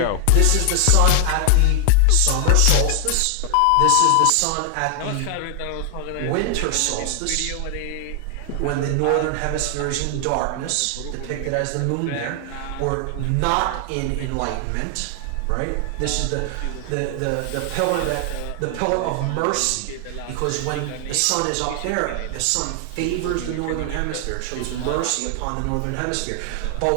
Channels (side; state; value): both; different; correlation 0.00